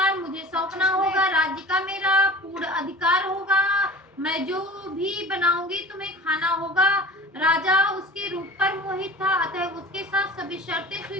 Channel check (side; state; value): both; normal; correlation 0.40